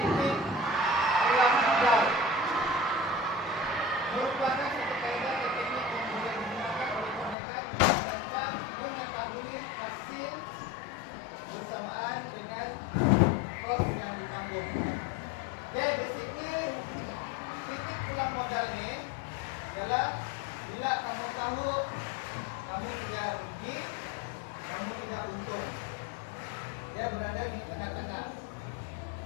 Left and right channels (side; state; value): right; drops out; at 7.4 s